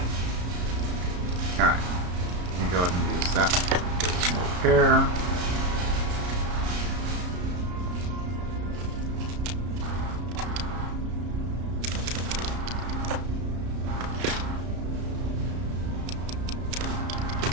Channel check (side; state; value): left; late; 33 ms